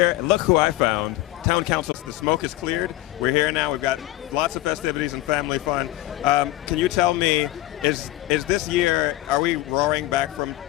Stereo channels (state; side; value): quieter; right; 16.5 dB